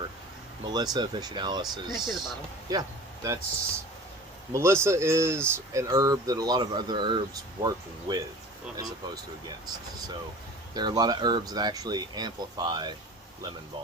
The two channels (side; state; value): both; normal; correlation 0.40